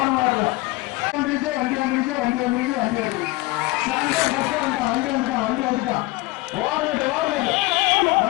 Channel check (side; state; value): right; quieter; 21.1 dB